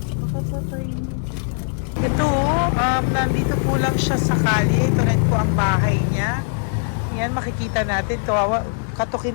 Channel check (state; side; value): silent; right; digital silence